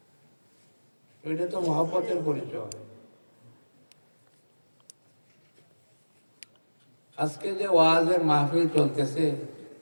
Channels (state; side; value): inverted; both; correlation -1.00